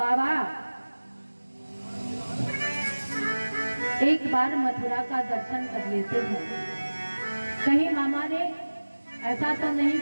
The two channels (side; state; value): both; inverted; correlation -1.00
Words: एक बार मथुरा का दर्शन कर लेते हैं। कहीं मामा ने ऐसा तो नहीं